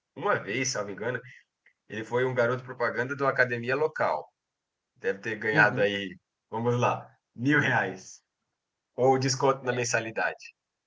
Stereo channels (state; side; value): identical; both; correlation 1.00